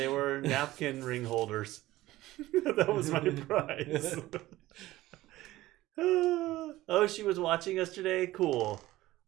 were napkin ring holders. That was my prize. Oh, she was watching us today? Cool.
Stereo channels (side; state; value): left; quieter; 16.7 dB